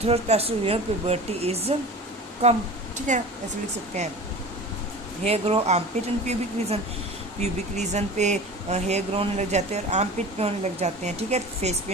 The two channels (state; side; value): normal; both; correlation 0.36